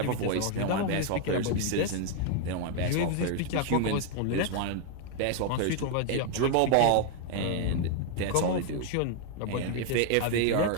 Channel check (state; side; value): different; both; correlation 0.00